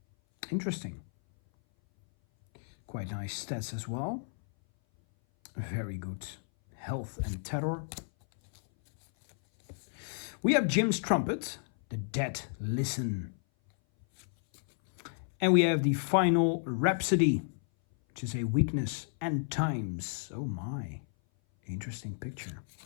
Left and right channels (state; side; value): silent; right; 56 dB below the other